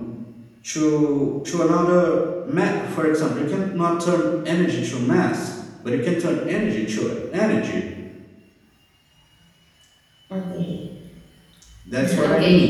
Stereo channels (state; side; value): identical; both; correlation 1.00